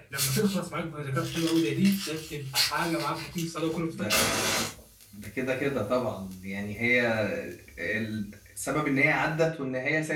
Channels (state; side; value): identical; both; correlation 1.00